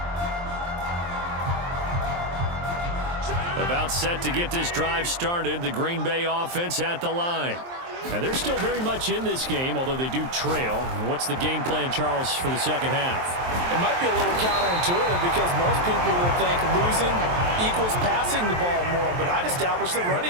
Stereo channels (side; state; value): left; late; 23 ms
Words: About set to get this drive started, the Green Bay offense at the line. And they're still very much in this game, although they do trail. What's the game plan, Charles, for the second half? It might be a little counterintuitive because most people will think losing equals passing the ball more, but I'd establish the